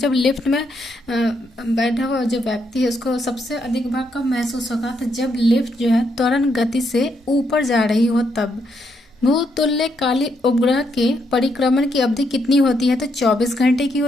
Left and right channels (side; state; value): both; normal; correlation 0.77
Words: लिफ्ट में बैठा हुआ जो व्यक्ति है उसको सबसे अधिक भार कब महसूस होगा। तो जब लिफ्ट जो है त्वरण गति से ऊपर जा रही हो तब। भूतुल्यकाली उपग्रह के परिक्रमण की अवधि कितनी होती है। तो 24 घंटे की